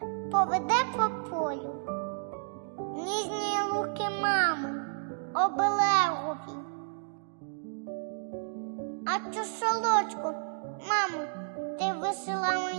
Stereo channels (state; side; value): silent; left; digital silence